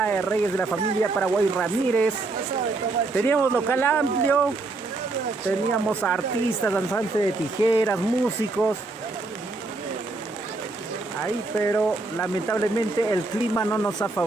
de Reyes de la familia Paraguay Ramírez. Teníamos local amplio. Teníamos artistas, danzantes de tijeras, músicos. Ahí, pero lamentablemente el clima no nos ha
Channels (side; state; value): left; quieter; 3.4 dB